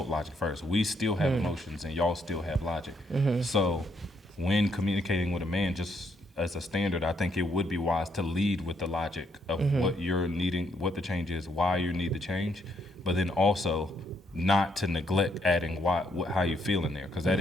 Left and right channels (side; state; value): both; normal; correlation 0.73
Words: logic first. We still have emotions and y'all still have logic. So when communicating with a man, just as a standard, I think it would be wise to lead with the logic of what you're needing, what the change is, why you need the change, but then also not to neglect adding how you feel in there, because